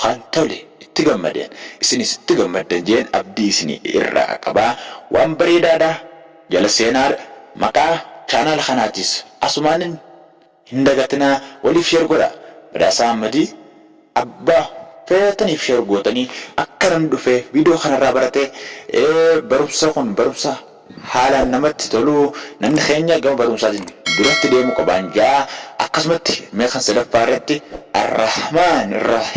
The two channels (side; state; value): both; identical; correlation 1.00